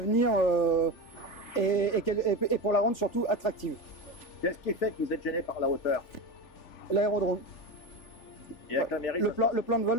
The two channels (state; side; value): late; right; 3.4 ms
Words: et pour la rendre surtout attractive. Qu'est-ce qui fait que vous êtes gêné par la hauteur? L'aérodrome. Et avec la mairie, le plan de vol